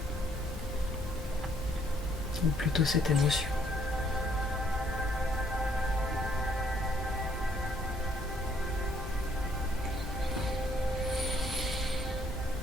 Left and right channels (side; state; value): both; normal; correlation 0.66